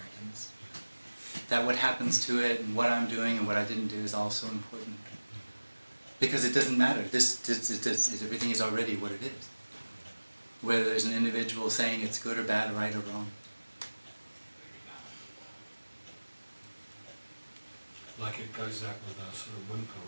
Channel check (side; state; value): both; inverted; correlation -1.00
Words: That what happens to it and what I'm doing and what I didn't do is also important. Because it doesn't matter. Everything is already what it is. Whether there's an individual saying it's good or bad, right or wrong. Like it goes out with a sort of whimper